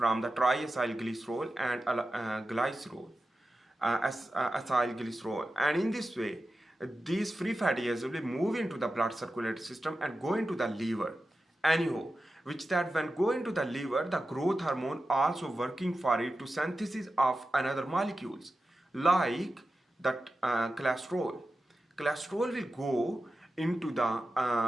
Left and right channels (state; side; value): normal; both; correlation 0.92